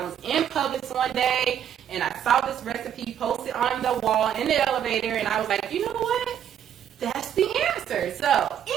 was in Publix one day and I saw this recipe posted on the wall in the elevator, and I was like, you know what? That's the answer. So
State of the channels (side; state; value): left; quieter; 9.6 dB